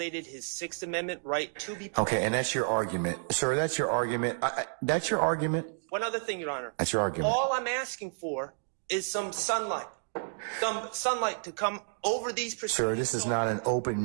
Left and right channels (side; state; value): left; silent; digital silence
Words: his Sixth Amendment right to be present. Okay, and that's your argument. Sir, that's your argument. That's your argument? One other thing, Your Honor. That's your argument. All I'm asking for is some sunlight. Some sunlight to come over these proceedings. Sir, this is not an open